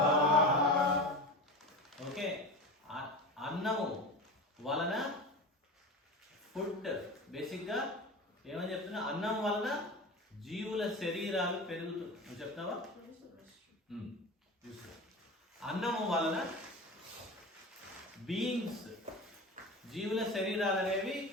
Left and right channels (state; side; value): normal; both; correlation 0.29